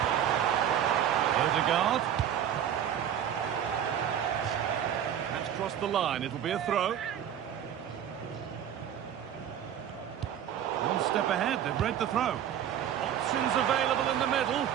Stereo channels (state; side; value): quieter; left; 9.8 dB